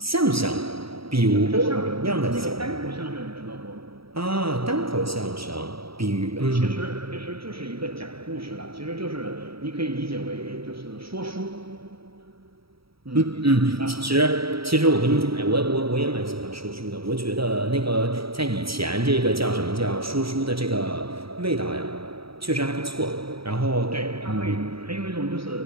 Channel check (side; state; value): left; late; 0.75 ms